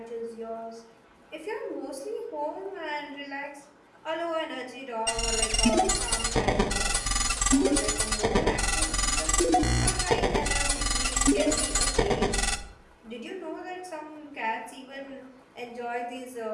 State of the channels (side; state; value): both; identical; correlation 1.00